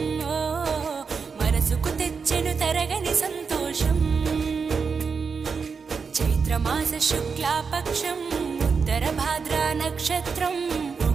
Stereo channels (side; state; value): left; quieter; 5.4 dB